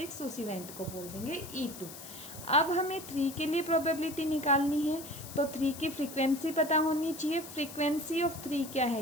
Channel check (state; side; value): noise; left; hiss, 13 dB below the sound